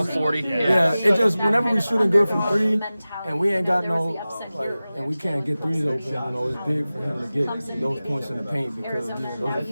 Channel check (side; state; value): both; inverted; correlation -0.96